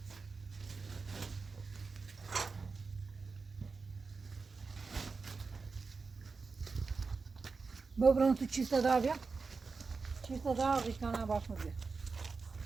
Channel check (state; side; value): quieter; left; 4.5 dB